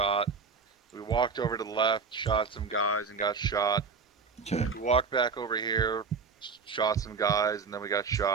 We walked over to the left, shot some guys, and got shot. Okay. We walked back over here, shot some guys, and then we got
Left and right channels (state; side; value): quieter; left; 5.1 dB